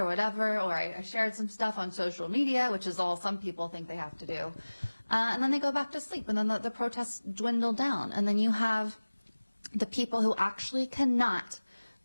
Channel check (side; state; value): both; inverted; correlation -1.00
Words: whatever, or I shared some stuff on social media, which is all some people think they have to do. And then they go back to sleep, and then the protests dwindle down. And then you have the people who actually cannot